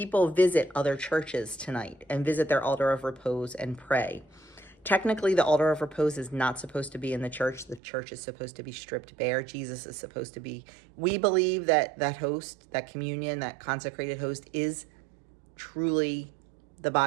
visit other churches tonight and visit their altar of repose and pray. Technically, the altar of repose is not supposed to be in the church. The church is supposed to be stripped bare. Jesus is supposed to be, we believe that that host, that communion, that consecrated host is truly the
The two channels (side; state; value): left; drops out; at 7.8 s